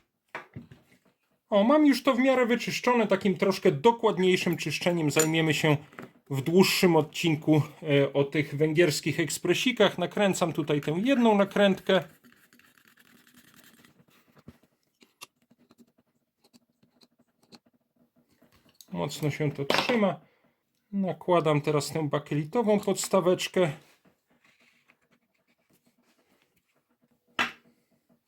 Mam już to w miarę wyczyszczone. Takim troszkę dokładniejszym czyszczeniem zajmiemy się w dłuższym odcinku o tych węgierskich ekspresikach. Nakręcam tutaj tę jedną nakrętkę. Mocno się to trzyma. Nakładam teraz tę bakelitową podstaweczkę.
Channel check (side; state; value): both; identical; correlation 1.00